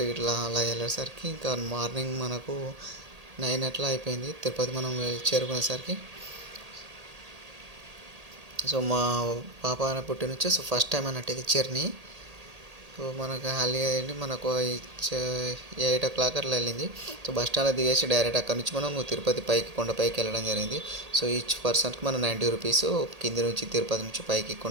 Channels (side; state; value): left; late; 1.8 ms